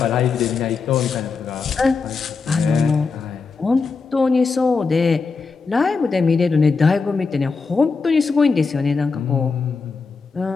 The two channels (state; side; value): quieter; right; 4.7 dB